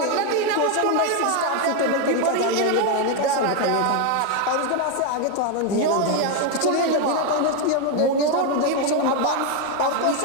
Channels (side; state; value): both; different; correlation 0.01